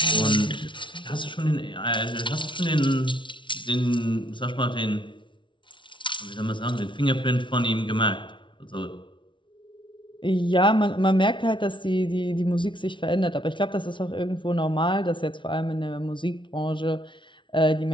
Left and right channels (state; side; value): late; right; 0.24 ms